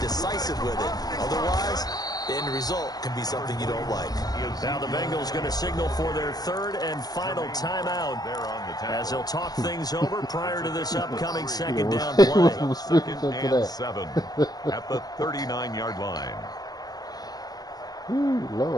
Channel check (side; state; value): right; late; 0.19 ms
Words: decisive with it. Otherwise, the end result can be something you don't like. Now the Bengals going to signal for their third and final timeout as they'll talk things over prior to this upcoming second down play. Second and 7 at the 39-yard line. Ooh,